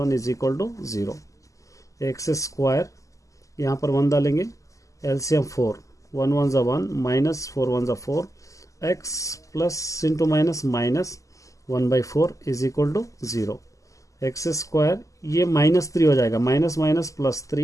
is equal to 0। X square यहाँ पर 1 डालेंगे, एलसीएम 4, 1 1 ज़ा 1 माइनस 4 1 ज़ा 4 x plus into minus 1/4 is equal to 0। X square ये -3 हो जाएगा, minus minus plus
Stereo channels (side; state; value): right; late; 0.16 ms